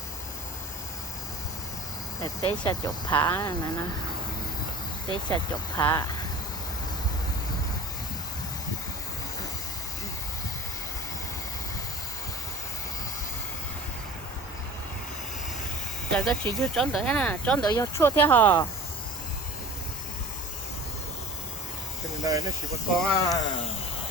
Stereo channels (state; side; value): normal; both; correlation 0.39